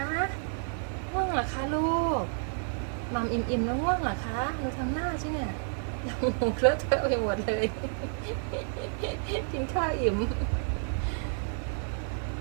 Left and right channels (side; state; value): left; silent; digital silence